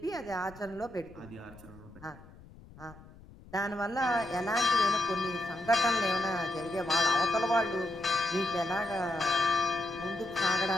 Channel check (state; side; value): noise; left; rumble, 21 dB below the sound